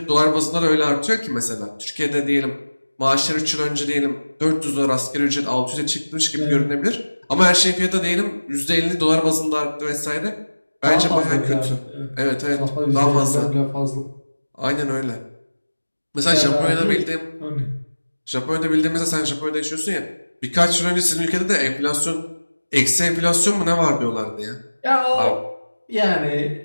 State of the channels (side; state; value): both; inverted; correlation -1.00